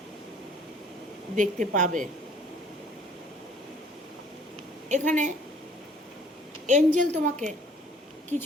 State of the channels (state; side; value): normal; both; correlation 0.56